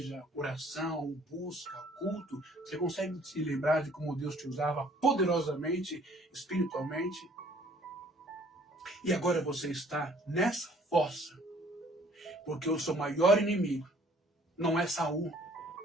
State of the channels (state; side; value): normal; both; correlation 0.58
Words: oração, busca, culto? Você consegue se lembrar de como Deus te usava poderosamente, espiritualmente? E agora você está nessa fossa, porque o seu maior inimigo não é Saul,